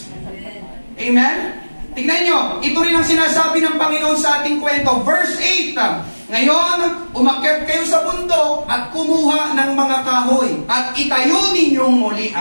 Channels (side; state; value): both; inverted; correlation -1.00